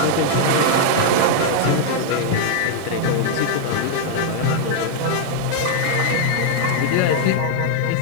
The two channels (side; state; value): both; different; correlation 0.00